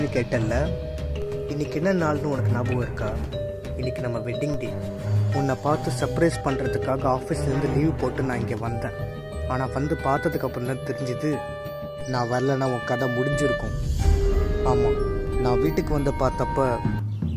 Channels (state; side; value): identical; both; correlation 1.00